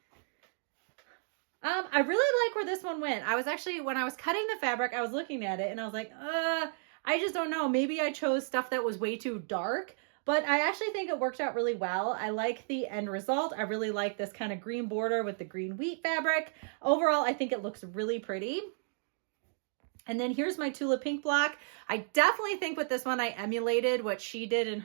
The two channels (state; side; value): silent; left; digital silence